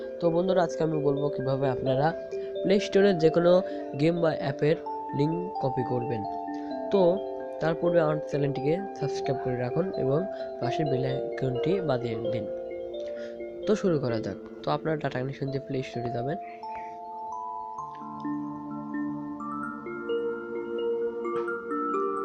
তো বন্ধুরা, আজকে আমি বলবো কিভাবে আপনারা প্লে স্টোরের যে কোনো গেম বা অ্যাপের লিঙ্ক কপি করবেন। তো তার পূর্বে আমার চ্যানেলটিকে সাবস্ক্রাইব করে রাখুন এবং পাশের বেল আইকনটি বাজিয়ে দিন। তো শুরু করা যাক। তো আপনারা ডাটা কানেকশন দিয়ে প্লে স্টোরে যাবেন।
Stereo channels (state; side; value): identical; both; correlation 1.00